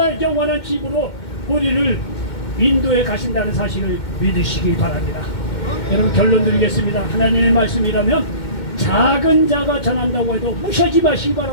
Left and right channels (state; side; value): late; right; 2.1 ms